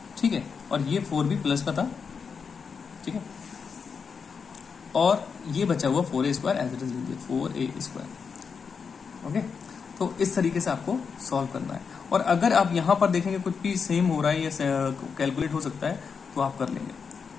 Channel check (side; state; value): right; quieter; 5.8 dB